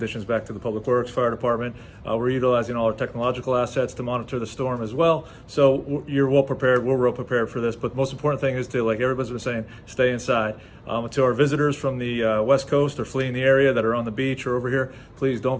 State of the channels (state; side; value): identical; both; correlation 1.00